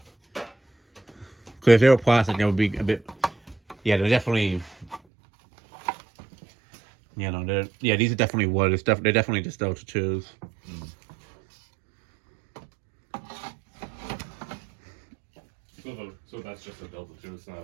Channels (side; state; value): left; drops out; at 5.0 s